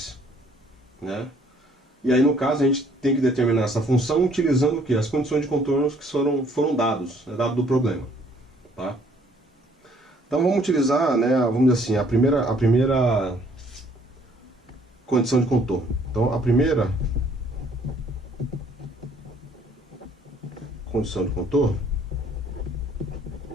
né? E aí no caso a gente tem que determinar essa função utilizando o que? As condições de contorno que foram dados, dado do problema, tá? Então vamos utilizar, né, vamos dizer assim, a primeira condição de contorno. Então a primeira condição de contorno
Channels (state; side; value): normal; both; correlation 0.61